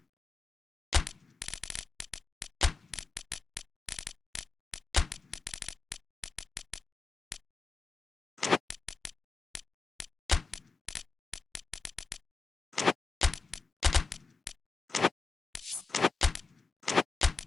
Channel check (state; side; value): quieter; right; 4.3 dB